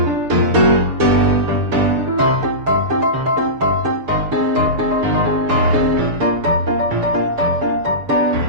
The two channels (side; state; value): left; late; 6.9 ms